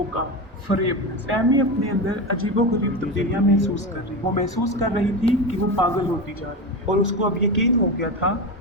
फरेबनेस। टैमी अपने अंदर अजीबोगरीब तब्दीलियां महसूस कर रही। वो महसूस कर रही थी कि वो पागल होती जा रही है, और उसको अब यकीन हो गया था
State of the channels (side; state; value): both; normal; correlation 0.20